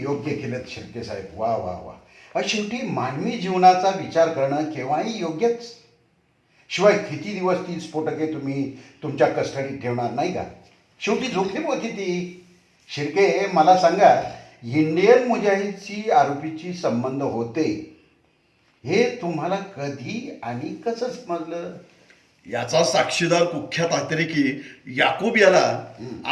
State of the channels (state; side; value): identical; both; correlation 1.00